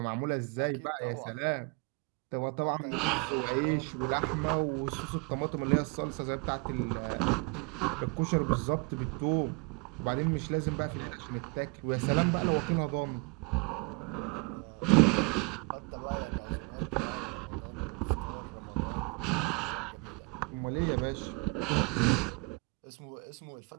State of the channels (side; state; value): left; quieter; 29.8 dB